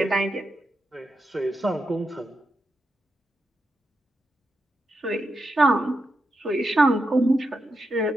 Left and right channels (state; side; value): normal; both; correlation 0.86